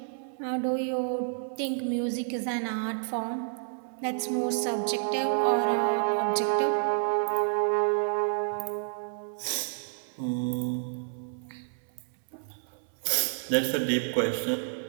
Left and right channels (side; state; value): left; silent; 58 dB below the other